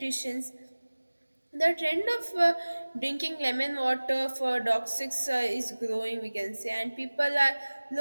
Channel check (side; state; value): both; inverted; correlation -1.00